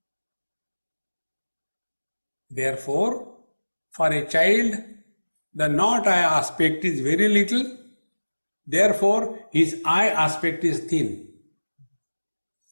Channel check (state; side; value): inverted; both; correlation -1.00